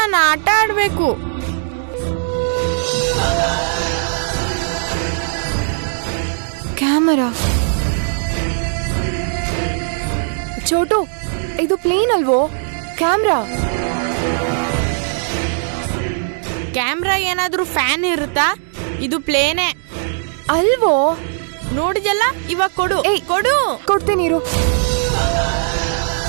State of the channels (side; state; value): left; silent; digital silence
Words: ಆಟ ಆಡ್ಬೇಕು. ಕ್ಯಾಮರಾ. ಚೋಟು, ಇದು ಪ್ಲೇನ್ ಅಲ್ವೋ? ಕ್ಯಾಮ್ರಾ. ಕ್ಯಾಮ್ರಾ ಏನಾದ್ರೂ ಫ್ಯಾನ್ ಇರುತ್ತಾ? ಇದು ಪ್ಲೇನೇ ಅಲ್ವೋ? ನೋಡಿದಲ್ಲ, ಇವಾಗ ಕೊಡು. ಏಯ್, ಕೊಡು. ಕೊಡ್ತೀನಿ ಇರು.